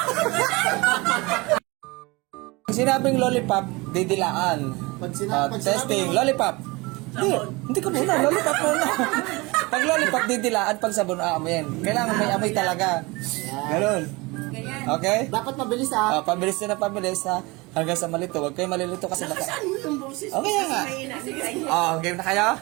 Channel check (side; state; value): left; quieter; 24.4 dB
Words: Sinabing lollipop, didilaan. Pag sinabi Testing, lollipop. Hindi ka muna, lollipop muna. Pag lollipop, didilaan, pag sabon, aamoyin. Kailangan may amoy talaga. Ganun. Ganyan. Okay? Dapat mabilis ha. Pabilis na pabilis ha. Hanggang sa malito. Huwag kayo malilito kasi Saan mo yung boses? Okay nga. Game na kayo?